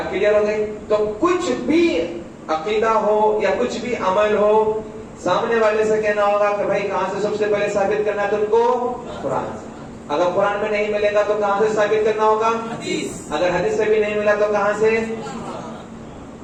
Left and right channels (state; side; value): identical; both; correlation 1.00